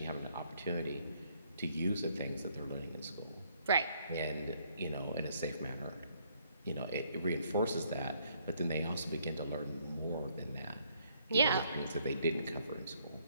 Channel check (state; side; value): inverted; both; correlation -0.68